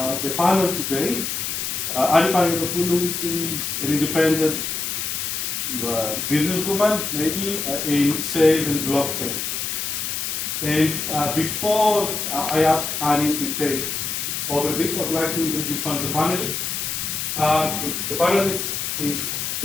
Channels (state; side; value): noise; left; hiss, 2 dB below the sound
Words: the panel today. Anni Panagiotopoulou is an independent businesswoman, maybe, in sales and blockchain. And before I ask Anni to take over this, I'd like to introduce one of the panelists. The panelist is